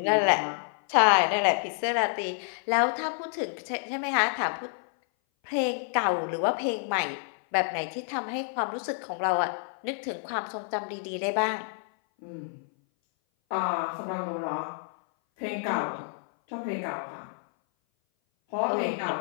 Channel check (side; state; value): right; silent; 57 dB below the other